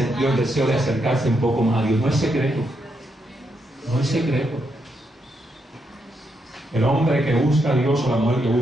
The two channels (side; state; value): both; normal; correlation 0.80